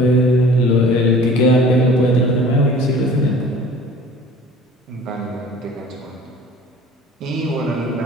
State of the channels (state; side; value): normal; both; correlation 0.46